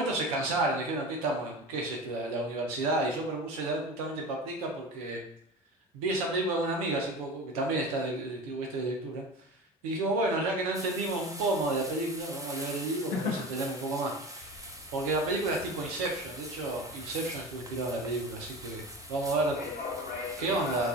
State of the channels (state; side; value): normal; both; correlation 0.31